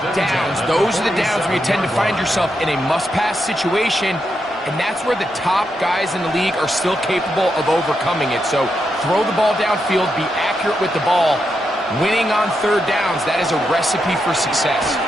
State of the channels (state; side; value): normal; both; correlation 0.84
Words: downs. Those are the downs where you tend to find yourself in a must-pass situation, and that's where the top guys in the league are still capable of overcoming it. So throw the ball downfield, be accurate with the ball. Winning on 3rd downs, that is a recipe for success.